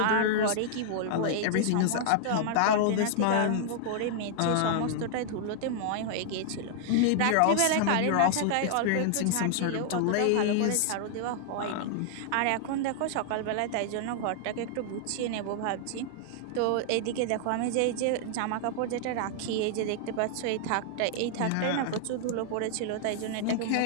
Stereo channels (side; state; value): both; different; correlation -0.01